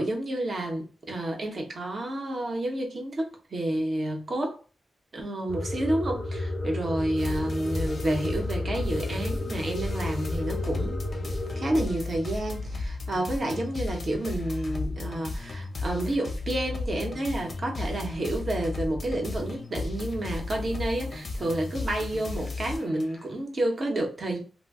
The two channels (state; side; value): normal; both; correlation 0.90